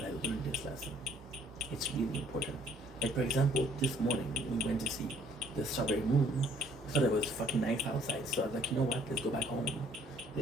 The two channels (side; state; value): both; normal; correlation 0.62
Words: I learned this lesson. It's really important. Like, for example, this morning we went to see the strawberry moon. I thought it was fucking nice outside, so I was like, you know what? Let's go back home.